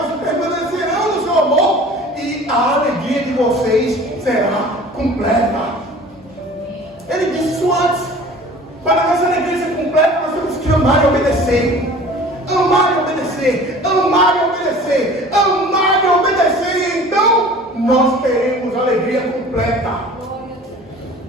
permanecerão no seu amor, e a alegria de vocês será completa. Ele disse isso antes. Para nossa alegria ser completa, nós temos que amar e obedecer. Amar e obedecer. Amar e obedecer. Amar e obedecer. E então nós teremos alegria completa.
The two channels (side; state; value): both; normal; correlation 0.45